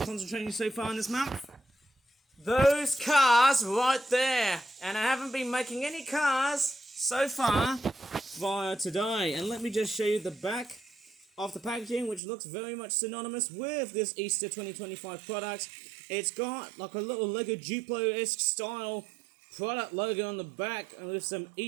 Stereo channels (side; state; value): left; drops out; at 12.2 s